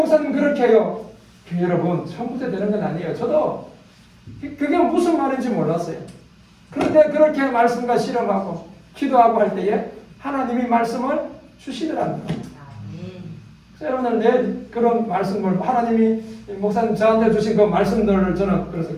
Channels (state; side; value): identical; both; correlation 1.00